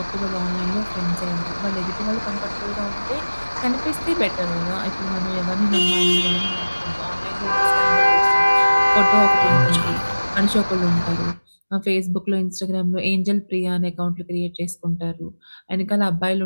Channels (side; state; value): both; inverted; correlation -1.00